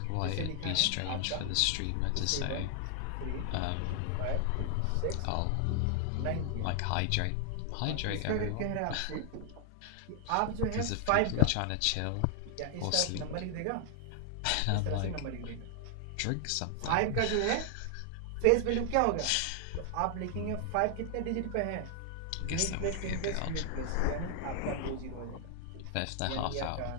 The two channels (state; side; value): different; both; correlation 0.00